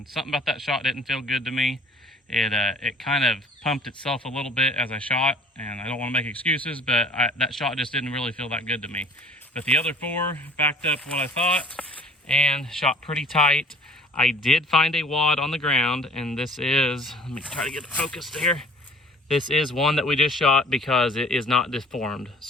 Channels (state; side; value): normal; both; correlation 0.50